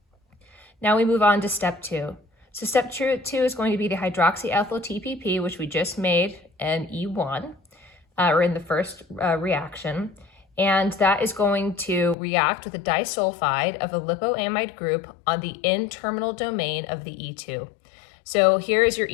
Now we move on to step 2. So step 2 is going to be the hydroxyethyl TPP, which we just made in E1, or in the first reaction. And that is going to react with a disulfide of a lipoamide group on the N-terminal domain of the E2. So here is your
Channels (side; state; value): right; drops out; at 12.2 s